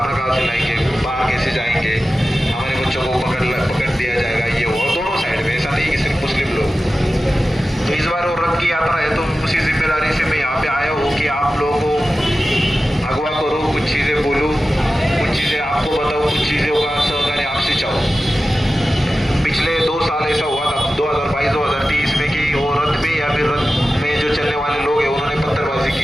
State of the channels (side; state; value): both; normal; correlation 0.94